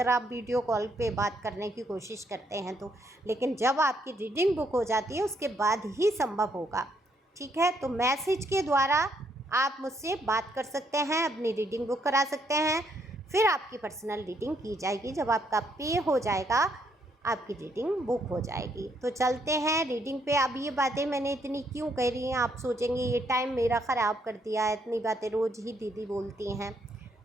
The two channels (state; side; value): normal; both; correlation 0.72